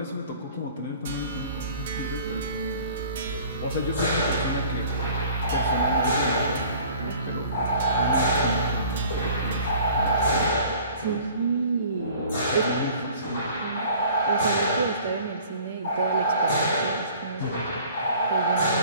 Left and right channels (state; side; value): inverted; both; correlation -0.49